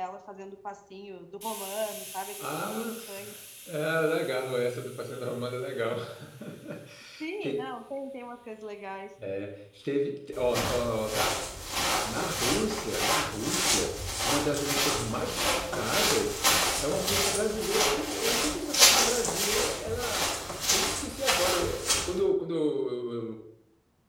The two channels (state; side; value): identical; both; correlation 1.00